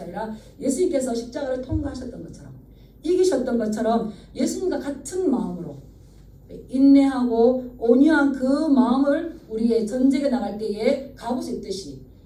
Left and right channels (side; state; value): both; identical; correlation 1.00